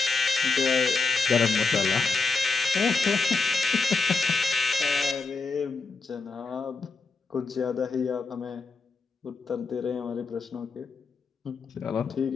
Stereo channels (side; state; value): right; quieter; 4.2 dB